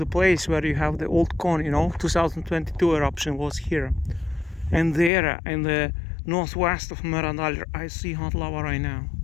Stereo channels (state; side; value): drops out; right; at 5.1 s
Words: place where you have the old cone, 2022 eruption was here. And there, in the northwest of Meradalir, I see hot lava right now.